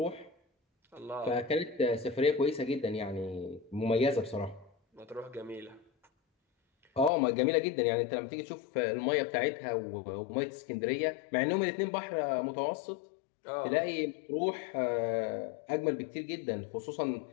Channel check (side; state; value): right; drops out; at 7.1 s